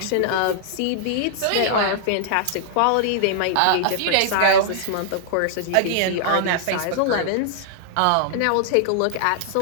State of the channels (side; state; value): both; different; correlation -0.01